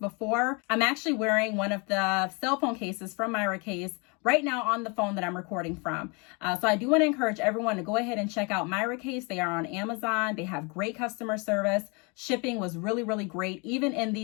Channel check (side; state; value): right; quieter; 31.0 dB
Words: I'm actually wearing one of the cell phone cases from Miracase right now on the phone that I'm recording from. So I do want to encourage everyone to go ahead and check out Miracase. They are on Amazon. They have great customer service. Shipping was really great, even in